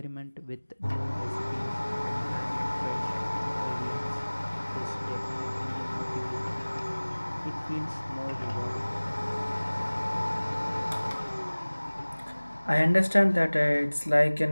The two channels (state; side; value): inverted; both; correlation -1.00